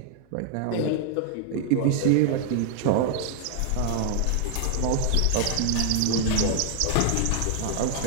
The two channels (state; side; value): different; both; correlation 0.00